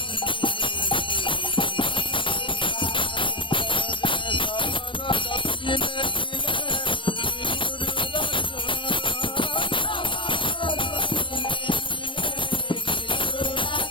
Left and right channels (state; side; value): late; right; 0.25 ms